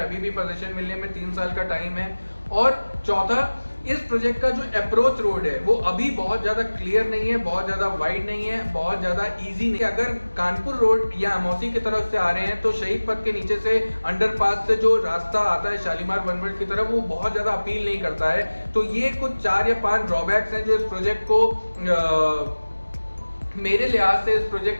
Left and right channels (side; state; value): both; inverted; correlation -1.00